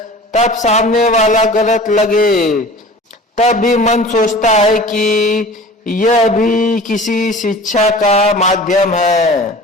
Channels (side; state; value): both; normal; correlation 0.41